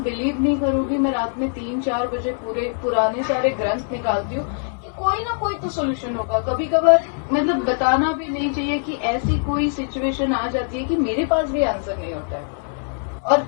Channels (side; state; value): right; silent; digital silence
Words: नहीं करोगी, मैं रात में 3-4 बजे पूरे पुराने सारे ग्रंथ निकालती हूँ कि कोई ना कोई तो सोल्यूशन होगा। कभी कभार मतलब बताना भी नहीं चाहिए कि ऐसी कोई सिचुएशन आ जाती है कि मेरे पास भी आंसर नहीं होता है। और